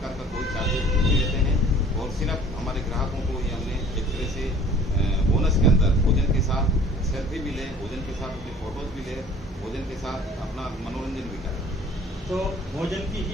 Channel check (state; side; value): normal; both; correlation 0.50